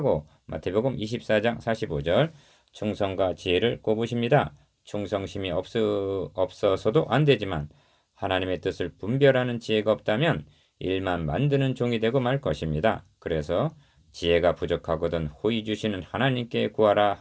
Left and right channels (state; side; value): identical; both; correlation 1.00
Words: 마태복음 24장 45절 충성과 지혜를 꼽으십니다. 충성심이 없어서도 안 되지만 하나님의 뜻을 분별하는 지혜가 없다면 일만 만드는 종이 되고 말 것입니다. 그래서 지혜가 부족하거든 호의 주시는 하나님께 구하라